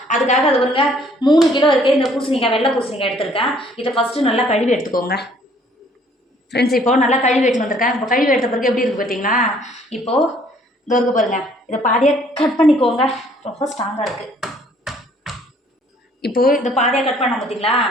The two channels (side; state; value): both; normal; correlation 0.60